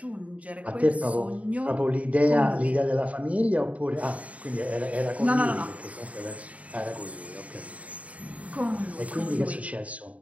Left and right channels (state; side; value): late; left; 0.067 ms